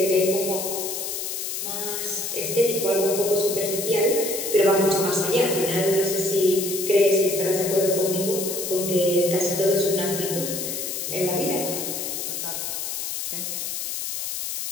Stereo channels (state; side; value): noise; left; hiss, 4 dB below the sound